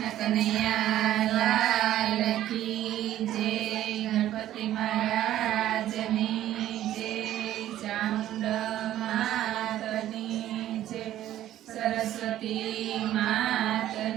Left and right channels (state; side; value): quieter; left; 12.8 dB